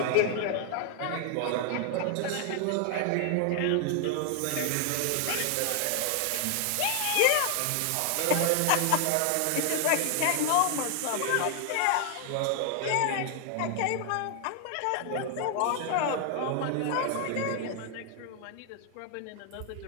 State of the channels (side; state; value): both; different; correlation 0.00